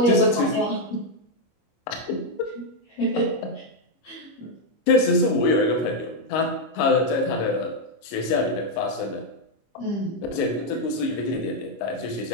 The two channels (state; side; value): late; right; 25 ms